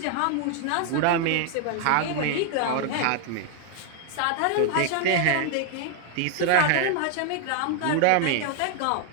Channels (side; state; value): both; different; correlation 0.00